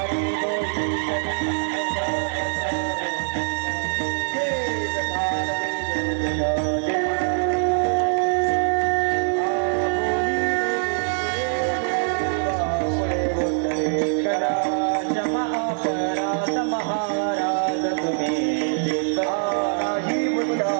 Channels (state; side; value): silent; left; 63 dB below the other